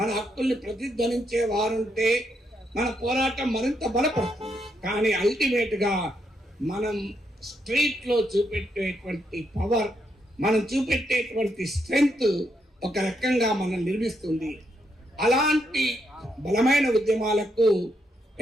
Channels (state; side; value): normal; both; correlation 0.78